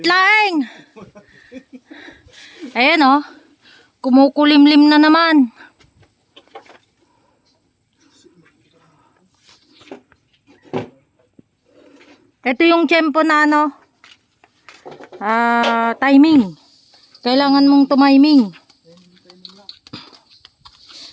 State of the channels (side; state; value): both; identical; correlation 1.00